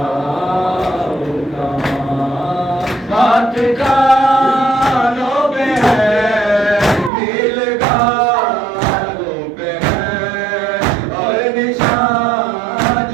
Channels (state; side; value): drops out; left; at 7.1 s